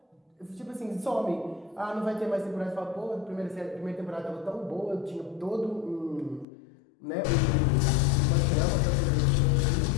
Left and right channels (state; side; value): drops out; right; at 6.5 s